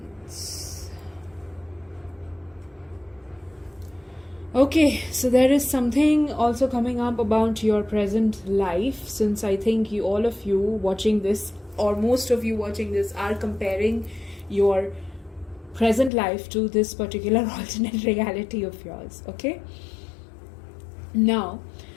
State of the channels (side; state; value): right; drops out; at 16.1 s